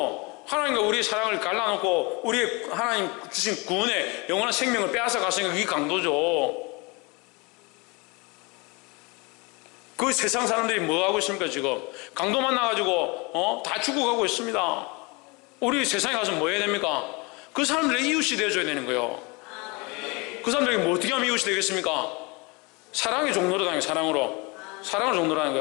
하나님과 우리의 사랑을 갈라놓고 우리의 하나님 주신 구원의 영원한 생명을 빼앗아 갔으니까 그게 강도죠. 그 세상 사람들이 뭐 하고 있습니까? 지금 강도 만나가지고 다 죽어가고 있습니다. 우리 세상에 가서 뭐 해야 됩니까? 그 사람들의 이웃이 되어줘야 되는 거예요. 그 사람들에게 뭐 어떻게 하면 이웃이 되겠습니까? 사랑의 종로로 다니는 사랑으로. 사랑을 종로로 하는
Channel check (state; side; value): quieter; right; 27.8 dB